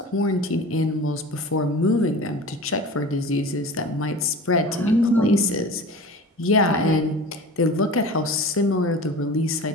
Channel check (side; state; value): both; normal; correlation 0.36